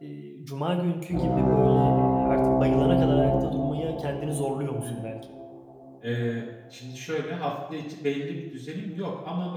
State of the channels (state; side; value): identical; both; correlation 1.00